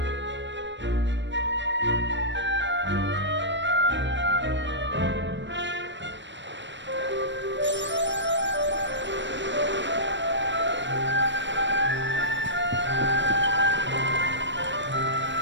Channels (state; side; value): late; left; 0.53 ms